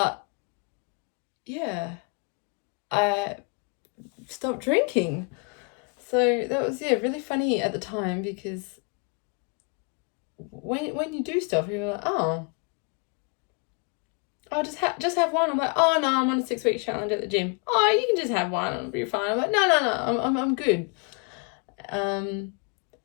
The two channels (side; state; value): right; quieter; 35.4 dB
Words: yeah, I stopped drinking. So that was, yeah, really funny at the time, because when you do stuff, you're like, oh, I'll just have one. I'm like, oh no, I'm on a 6-week challenge at the gym. Oh, you can just have one, it'll be fine. I'm like, no, I'm good. And